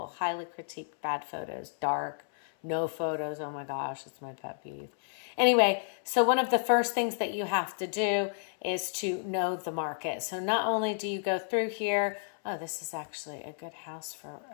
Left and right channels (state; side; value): silent; right; 57 dB below the other